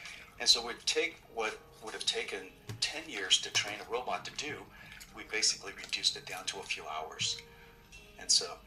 And so we'd take what would have taken 10 years to train a robot to do, we basically reduced it down to a few hours. And so,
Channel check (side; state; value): both; identical; correlation 1.00